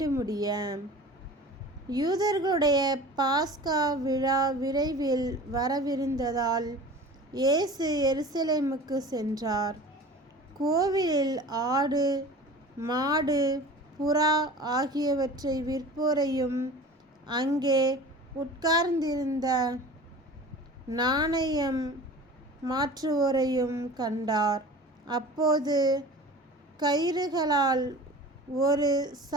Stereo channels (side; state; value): both; normal; correlation 0.39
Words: முடிய. யூதர்களுடைய பாஸ்கா விழா விரைவில் வரவிருந்ததால் இயேசு எருசலேமுக்கு சென்றார். கோவிலில் ஆடு, மாடு, புறா ஆகியவற்றை விற்போரையும் அங்கே உட்கார்ந்திருந்த நாணயம் மாற்றுவோரையும் கண்டார். அப்போது கயிறுகளால் ஒரு